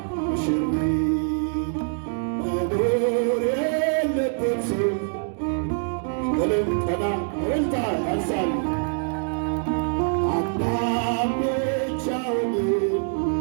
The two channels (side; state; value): left; silent; digital silence